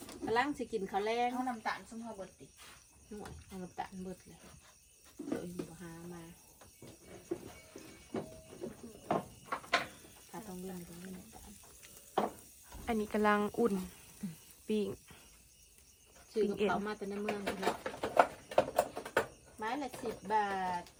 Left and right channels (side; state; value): both; identical; correlation 1.00